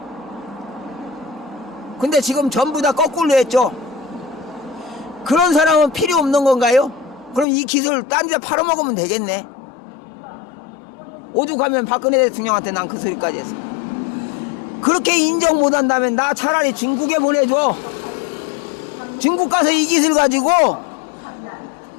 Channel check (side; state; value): right; drops out; at 7.5 s